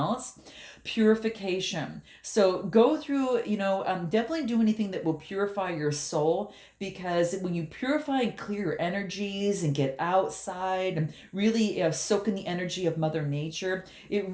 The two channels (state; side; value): identical; both; correlation 1.00